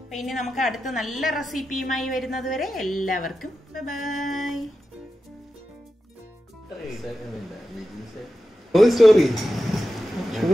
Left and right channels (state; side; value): normal; both; correlation 0.91